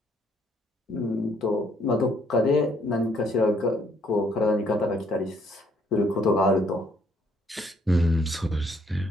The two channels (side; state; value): both; normal; correlation 0.67